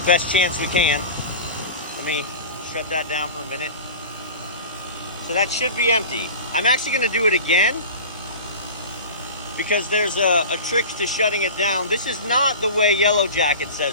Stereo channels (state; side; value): inverted; both; correlation -0.33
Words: best chance we can. Let me shut that down for a minute. So that should be empty. I'm actually gonna do it again, because there's a trick to shutting it down. This is not the way Yellow Jacket